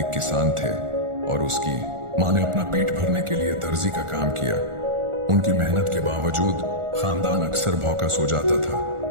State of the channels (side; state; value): left; late; 1.4 ms